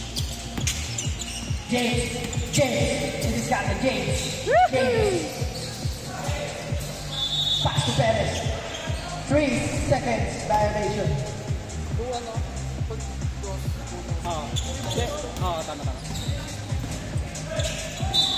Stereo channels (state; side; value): identical; both; correlation 1.00